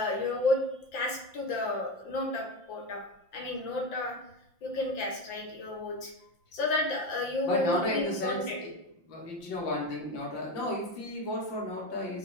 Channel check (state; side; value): late; right; 5.8 ms